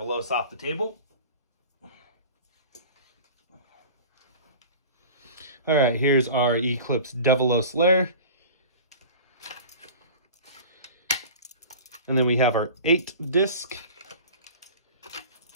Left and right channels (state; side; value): inverted; both; correlation -0.38